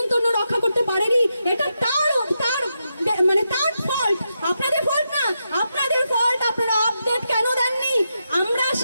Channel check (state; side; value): inverted; both; correlation -0.85